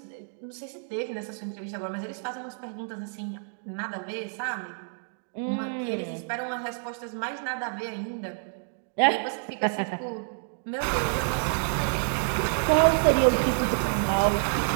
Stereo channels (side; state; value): left; silent; digital silence